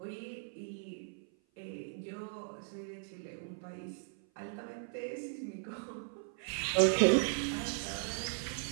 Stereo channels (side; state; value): left; silent; 53 dB below the other